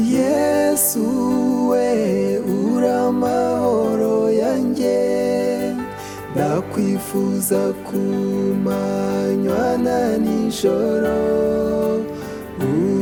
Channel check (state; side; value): identical; both; correlation 1.00